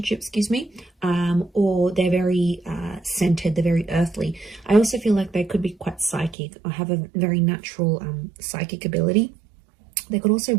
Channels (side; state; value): left; drops out; at 6.4 s